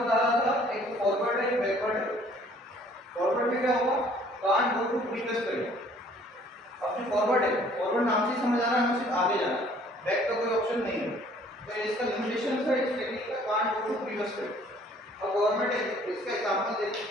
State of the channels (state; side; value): normal; both; correlation 0.57